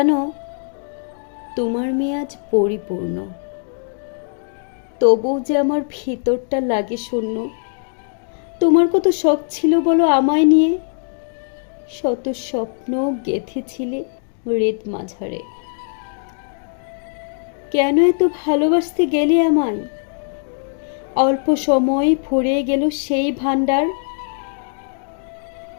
তোমার মেয়ে আজ পরিপূর্ণ, তবুও যে আমার ভিতরটা লাগে শূন্য। তোমার কত শখ ছিল বলো আমায় নিয়ে, শত স্বপ্ন গেঁথেছিলে হৃদ মাঝারে। কেন এত ভালোবাসতে গেলে আমায়? অল্প সময় ফুরিয়ে গেল সেই ভান্ডার।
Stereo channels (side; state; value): right; silent; digital silence